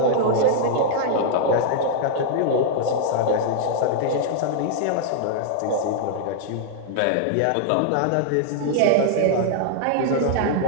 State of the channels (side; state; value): both; different; correlation -0.01